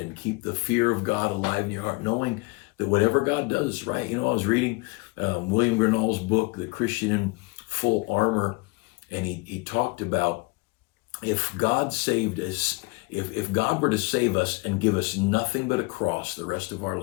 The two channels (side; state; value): right; quieter; 26.6 dB